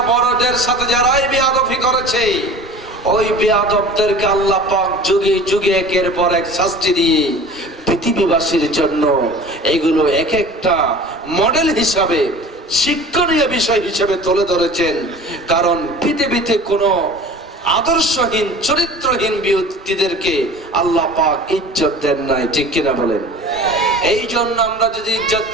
বড়দের সাথে যারাই বেয়াদবি করেছে, ওই বেয়াদবদেরকে আল্লাহ পাক যুগে যুগে একের পর এক শাস্তি দিয়ে পৃথিবীবাসীর জন্য এগুলো এক একটা মডেল হিসাবে, শিক্ষণীয় বিষয় হিসেবে তুলে ধরেছেন। কারণ পৃথিবীতে কোনো আদর্শহীন, চরিত্রহীন ব্যক্তিদেরকে আল্লাহ পাক ইজ্জত দেন নাই। ঠিক কিনা বলেন? এই জন্য আমরা যদি ইজ্জত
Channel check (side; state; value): both; normal; correlation 0.41